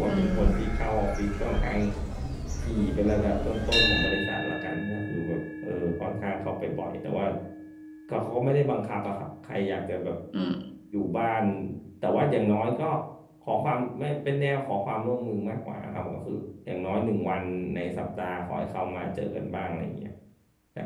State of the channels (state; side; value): identical; both; correlation 1.00